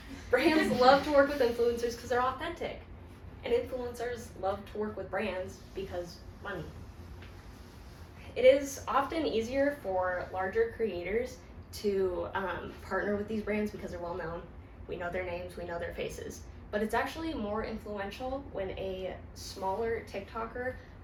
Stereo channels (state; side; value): identical; both; correlation 1.00